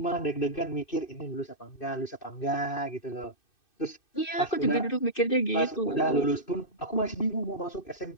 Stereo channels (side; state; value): right; late; 2.6 ms